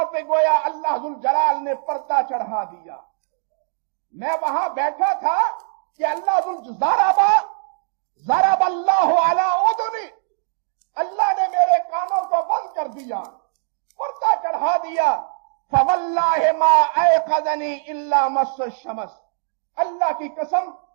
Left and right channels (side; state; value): left; silent; digital silence